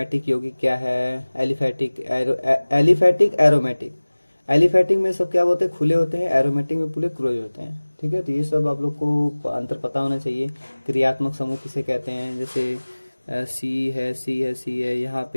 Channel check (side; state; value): both; inverted; correlation -1.00